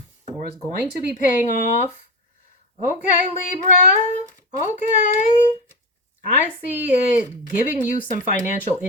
or is going to be paying off. Okay, Libra. Okay. I see it giving you some financial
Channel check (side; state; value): both; normal; correlation 0.20